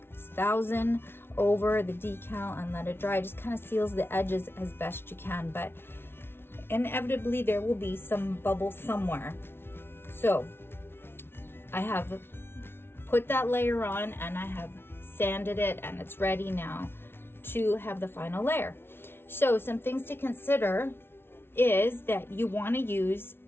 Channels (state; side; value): late; right; 0.11 ms